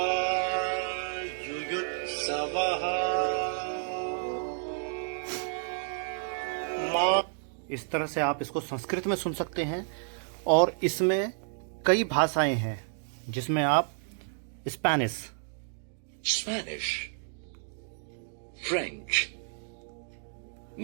युयुत्सवः। इस तरह से आप इसको संस्कृत में सुन सकते हैं। और इसमें कई भाषाएं हैं, जिसमें आप Spanish, Spanish, French,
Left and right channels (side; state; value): left; silent; digital silence